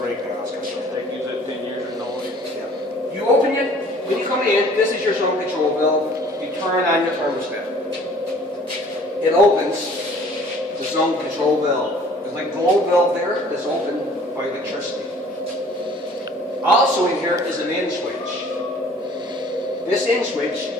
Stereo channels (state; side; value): normal; both; correlation 0.52